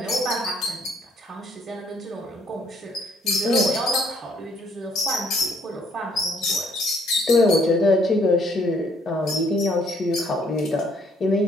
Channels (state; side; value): normal; both; correlation 0.66